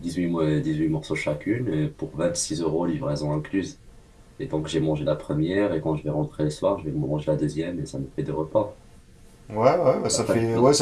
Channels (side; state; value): both; identical; correlation 1.00